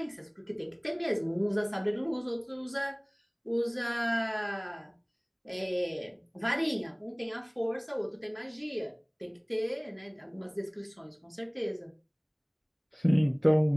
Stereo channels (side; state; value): both; identical; correlation 1.00